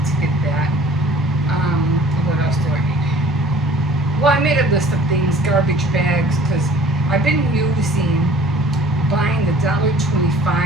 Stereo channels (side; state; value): both; normal; correlation 0.51